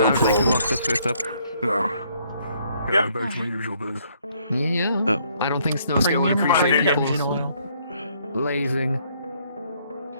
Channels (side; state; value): both; inverted; correlation -0.67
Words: I'd like to problem. lock the first up. No. Yeah, back to my usual biz. Yeah. Oh. I don't think Snowscale would appreciate people's lazing.